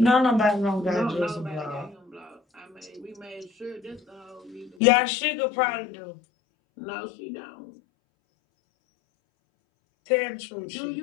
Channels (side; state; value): right; drops out; at 4.8 s